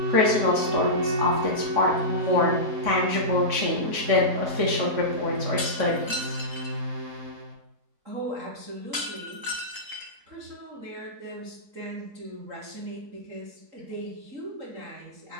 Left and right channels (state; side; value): late; left; 4.0 ms